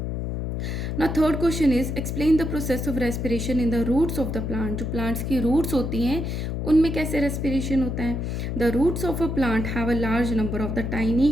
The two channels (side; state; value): left; noise; hum, 3 dB below the sound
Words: ना। Third question is explain the process of respiration in the roots of the plant. जो प्लांट्स की रूट्स होती हैं उनमें कैसे रेस्पिरेशन होता है। The roots of a plant have a large number of the tiny